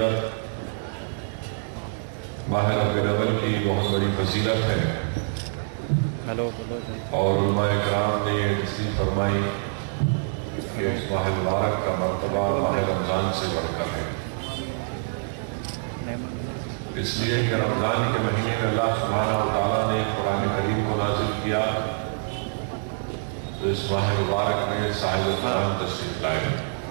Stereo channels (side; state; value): left; silent; digital silence